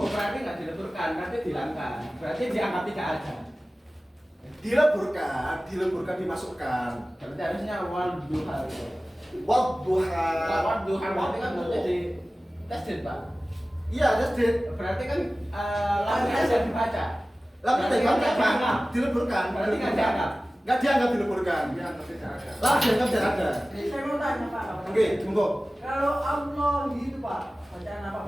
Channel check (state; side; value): normal; both; correlation 0.97